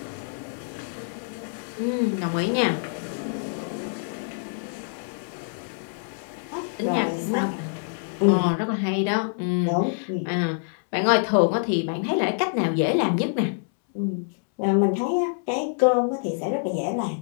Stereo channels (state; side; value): silent; right; 61 dB below the other